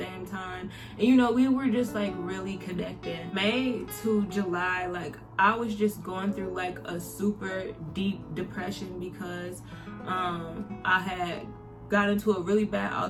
time, and we were just like really connected. May to July, like I was just going through like a super deep depression because I had got into a really bad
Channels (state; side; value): identical; both; correlation 1.00